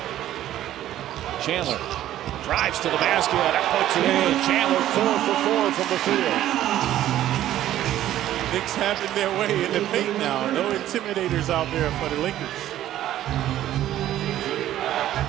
Chandler drives to the basket, that puts it in. Chandler 4 for 4 from the field. Knicks having their way in the paint now. No intimidators out there for the Lakers.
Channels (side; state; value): left; quieter; 12.8 dB